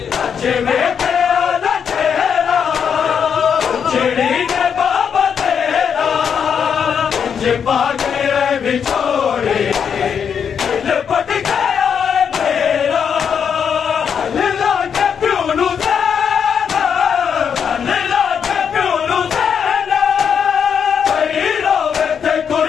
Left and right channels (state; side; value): quieter; right; 7.3 dB